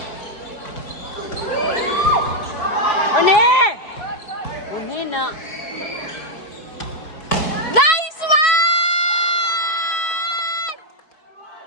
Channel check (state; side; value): late; right; 4.6 ms